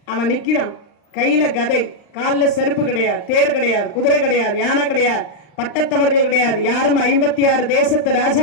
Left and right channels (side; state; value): right; late; 39 ms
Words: அவன் நிக்கிறான். கையில கதை, காலில் செருப்பு கிடையாது, தேர் கிடையாது, குதிரை கிடையாது, யானை கிடையாது, பட்டத்தவர்கள் கிடையாது, யாரும் 56 தேசத்து